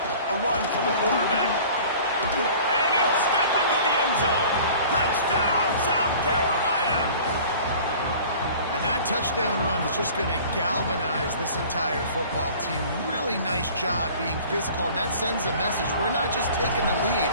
A run for the quarterback. And he'll step into the end zone. Touchdown, South Carolina. And that touchdown run is just going to galvanize this entire football team. Really nice job being physical, and that sends a message. We're not just taking the lead.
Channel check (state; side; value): inverted; both; correlation -0.45